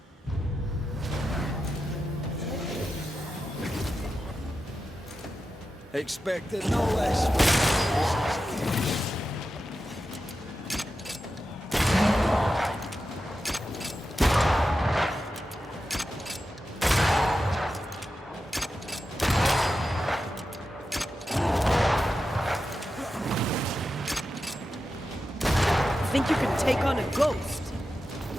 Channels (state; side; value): normal; both; correlation 0.90